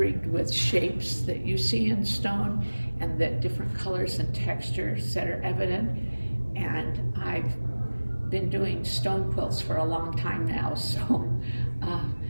with shapes that you see in stone and the different colors and textures that are evident. And I've been doing stone quilts for a long time now, so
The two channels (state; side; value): inverted; both; correlation -1.00